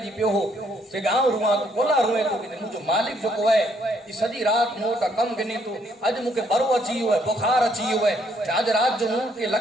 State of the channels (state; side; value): normal; both; correlation 0.69